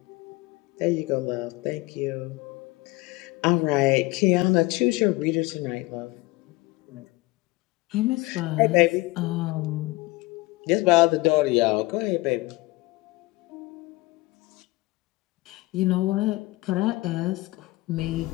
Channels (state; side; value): quieter; right; 21.1 dB